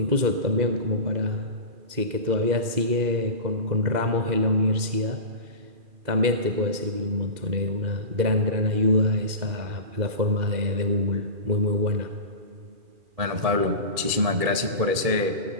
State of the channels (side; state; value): left; late; 2.4 ms